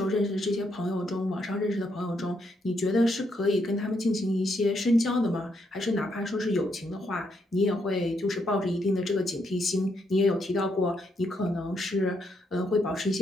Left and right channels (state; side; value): normal; both; correlation 0.77